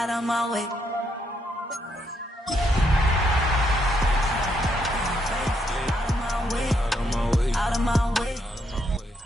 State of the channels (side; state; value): both; normal; correlation 0.76